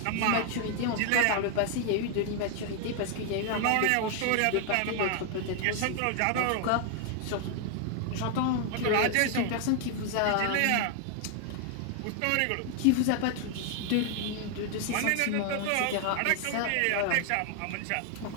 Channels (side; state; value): both; different; correlation 0.00